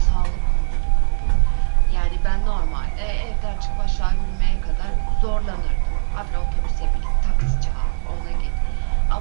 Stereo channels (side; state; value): left; silent; digital silence